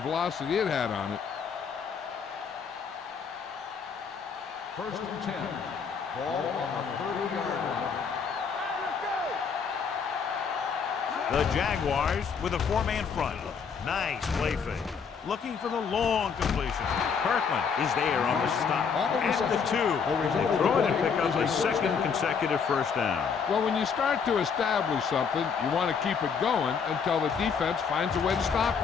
it had on it. First and 10. Ball on the 30-yard line. The Jaguars with a 4-man front. Nice play fake. Looking for the long completion. Kirkland is there on the stop at the 2. They throw it and pick up a second consecutive first down. Well, when you start to establish something, you want to keep it going until the defense finds a way to stop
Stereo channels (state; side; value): quieter; right; 6.2 dB